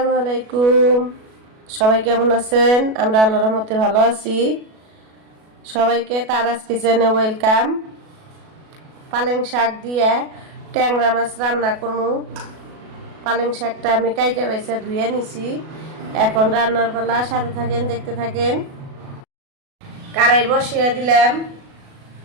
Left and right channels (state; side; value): late; left; 37 ms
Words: আলাইকুম। সবাই কেমন আছেন? আমরা আল্লাহর রহমতে ভালো আছি। সবাইকে তারাস কিচেনে ওয়েলকাম। পালেং শাক দিয়ে ট্যাংরা মাছ রান্না করবো। পালেং শাকটা আমি কাইটা বাইসা ধুয়ে নিছি। এখন রান্নার পালা, সাথে থাকেন, দেখতে থাকেন। কড়াই বসিয়ে দিলাম,